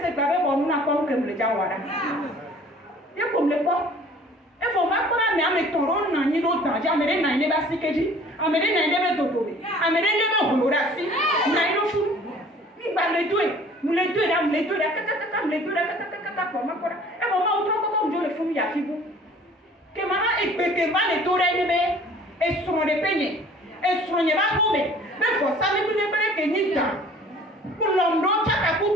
pas bon nous n'a pas que me le jawara. Et comme le quoi e faut pas qu'on a mis toron na ni do danger amere na ile ba sikeji amere na ile be dodobe amere ile be holorasi na ile fu ni ba le doe nous le doe là kaka le doe kaka comme quoi e faut pas autre comme je le fou ya fibu que mama e peke ma le tore ni be e sono de peñe e sono ba hobe be for sa me ni be ke ni ta pour l'homme chaka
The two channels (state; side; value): normal; both; correlation 0.51